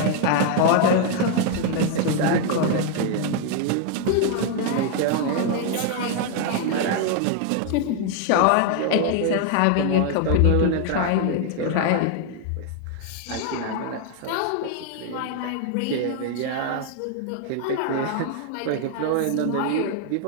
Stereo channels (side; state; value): both; different; correlation 0.00